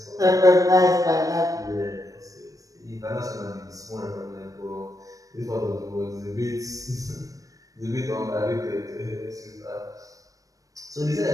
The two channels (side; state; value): left; late; 0.16 ms